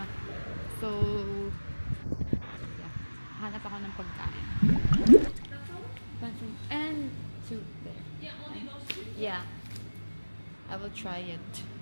So, yeah. Hanap ako ng pagkain. And soup there. Yeah, only those two? Yeah. I will try it.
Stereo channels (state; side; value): inverted; both; correlation -1.00